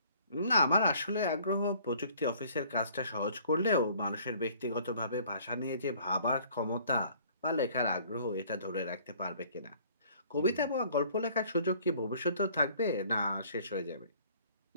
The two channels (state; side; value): inverted; both; correlation -0.56